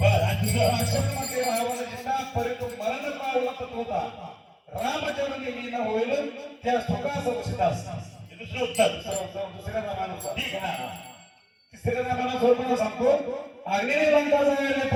आणि दुसरं राक्षसमध्ये रावणाचा परितो मरण पावला होता रामचरण येईन होईल त्या सुखास सीतास हे दुसरं उत्तर दुसऱ्या रामानुसार ठीक आहे ना तिसऱ्या रामानुसार सांगतो अग्नी लंका जायला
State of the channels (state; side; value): identical; both; correlation 1.00